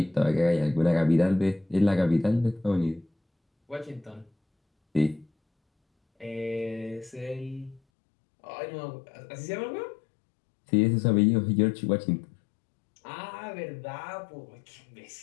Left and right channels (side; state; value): right; drops out; at 7.8 s